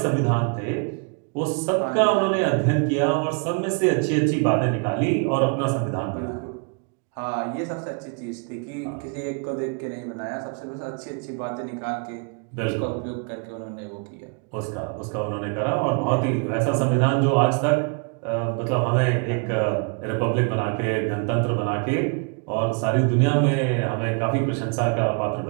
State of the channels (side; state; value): left; quieter; 37.8 dB